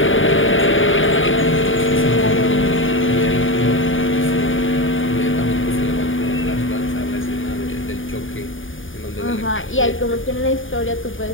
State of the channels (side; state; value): right; late; 0.57 ms